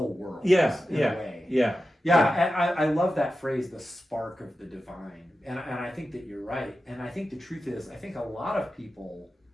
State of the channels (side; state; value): both; normal; correlation 0.92